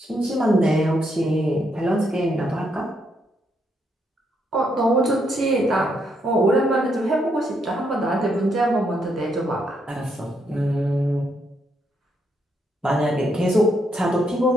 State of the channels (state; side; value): normal; both; correlation 0.76